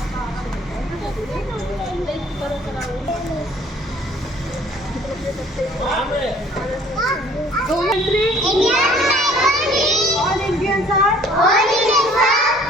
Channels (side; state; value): both; normal; correlation 0.55